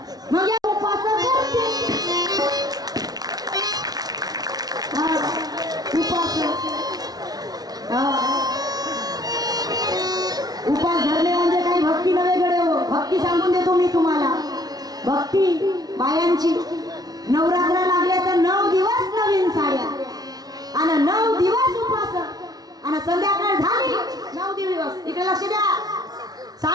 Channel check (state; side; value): late; left; 0.19 ms